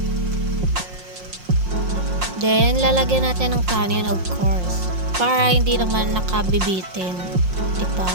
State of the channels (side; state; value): left; late; 5.6 ms